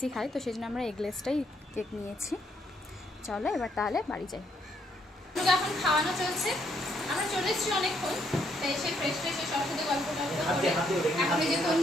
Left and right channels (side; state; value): both; normal; correlation 0.72